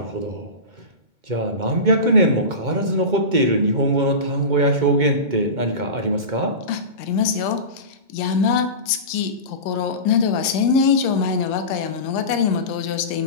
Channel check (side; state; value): left; late; 2.2 ms